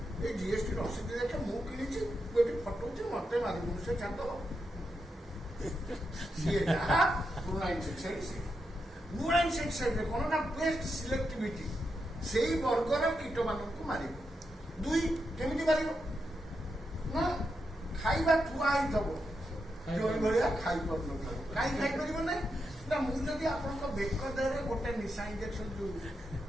ଏ ଜିଏସଟି ରସିଦ ଦେଖେ ମୁଁ କିଣିଛି, ମୁଁ ଏଠି ଫଟଉଛି, ମତେ ମାରିବୁନି, ସେ ଛାଡ଼ିଦବ। ସିଏ ଯାହା ପୁରୁଣା ଇନସେକ୍ଟିସାଇଡ୍, ନୂଆ ଇନସେକ୍ଟିସାଇଡ୍ରେ କ'ଣ ନା ବେଷ୍ଟ ସିଲେକ୍ଟିଭିଟି, ସେଇ ବର୍ଗର କୀଟ ମାନଙ୍କୁ ମାରିବ। 2 କେମିତି ମାରିବ ନା ଖାଇବା ଥୁଆ ହେଇଥିବ, ଯୋଉ ଭଳିଆ ଖାଇପାରୁନଥିବ। କାହିଁ ଖାଇପାରିବ ନାହିଁ ନା ମୁଁ ଯଦି ଆପଣଙ୍କ ବେକ ଦେହରେ ଗୋଟେ ନିଶା ଇଞ୍ଜେକ୍ସନ ଯୋଉ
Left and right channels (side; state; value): both; normal; correlation 0.85